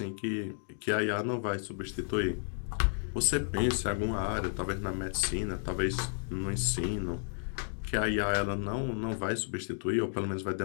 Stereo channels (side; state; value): right; silent; 56 dB below the other